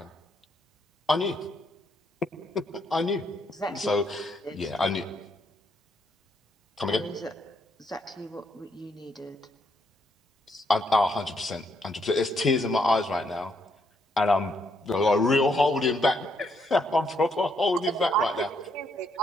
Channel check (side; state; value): both; normal; correlation 0.75